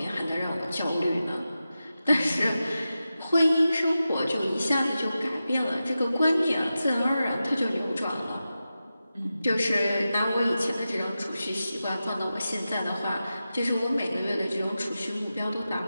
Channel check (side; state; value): both; inverted; correlation -0.92